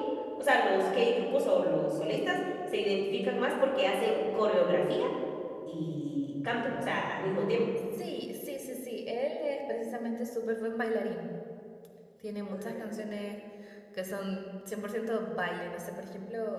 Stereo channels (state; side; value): identical; both; correlation 1.00